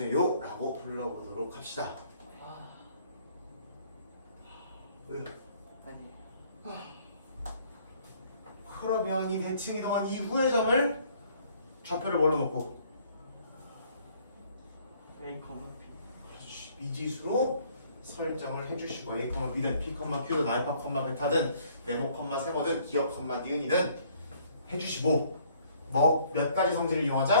라고 불러보도록 합시다. 왜? 그러면 이 대칭 이동한 이후의 점을 좌표를 뭘로 놓고 A, 그렇지. 미지수로 설정을 해주시고 A, B든 P, Q든 알파, 베타든 네모, 세모든 기억, 니은이든 해주시고 뭐 몇 가지 성질을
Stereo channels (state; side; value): inverted; both; correlation -0.61